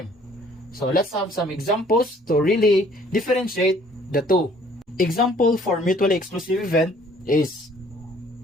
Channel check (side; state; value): both; normal; correlation 0.58